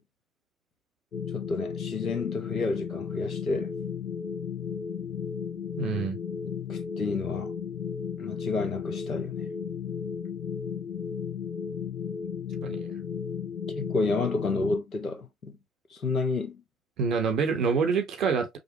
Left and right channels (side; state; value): both; normal; correlation 0.57